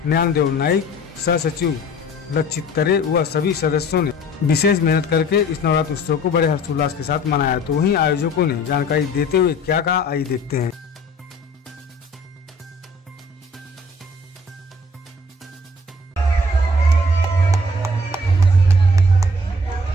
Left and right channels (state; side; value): normal; both; correlation 0.52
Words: ज्ञानदेव नाइक, सह सचिव लक्षित तरे व सभी सदस्यों ने विशेष मेहनत करके इस नवरात्र उत्सव को बड़े हर्षोल्लास के साथ मनाया। तो वहीं आयोजकों ने जानकारी देते हुए क्या कहा, आइए देखते हैं।